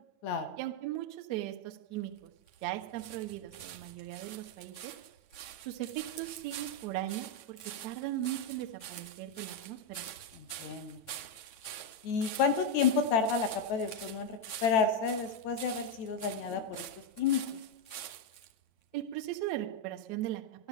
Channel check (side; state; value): right; late; 9.0 ms